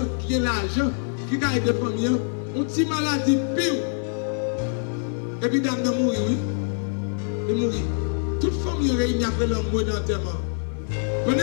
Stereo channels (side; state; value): right; silent; digital silence